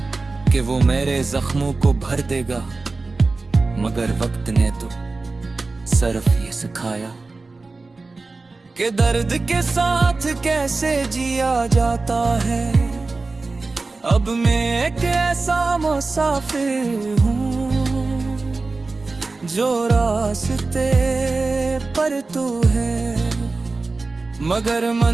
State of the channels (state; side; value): quieter; left; 3.7 dB